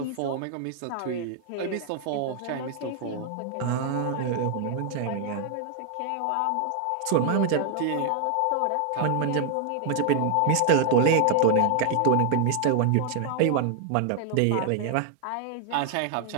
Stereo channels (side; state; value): both; different; correlation 0.00